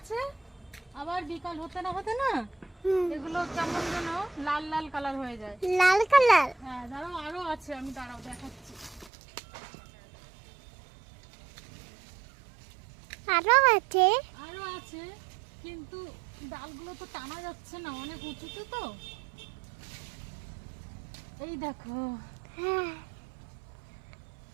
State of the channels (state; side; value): drops out; left; at 9.1 s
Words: আবার বিকাল হতে না হুম। এগুলো কেমন যেন লাল লাল কালার হয়ে যায়। লাল কালার? হ্যাঁ দাঁড়াও, আরো আছে, আমি দাঁড়াও দেখাচ্ছি। আরো আছে? আরো আছে, কিন্তু ডালগুলো তো টানা যাচ্ছে না, অনেক উঁচুতে তো। এই দেখো, হ্যাঁ।